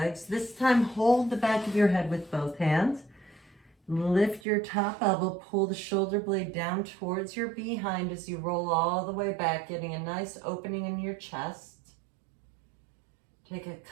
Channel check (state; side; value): drops out; left; at 4.4 s